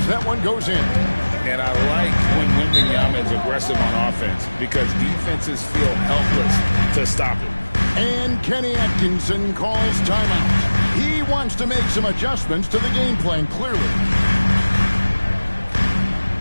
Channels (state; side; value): inverted; both; correlation -1.00